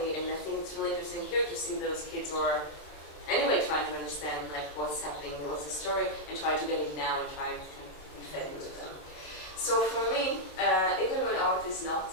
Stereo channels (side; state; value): right; late; 27 ms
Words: And I think it's really interesting here to see those kids who are anyway trying to understand like what's happening, what's the story, and trying to get it now and trying to be fed into them. So for me, even when art is not